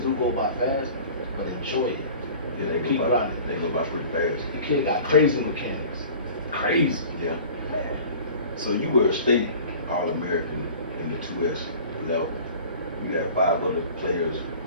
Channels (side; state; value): both; inverted; correlation -0.43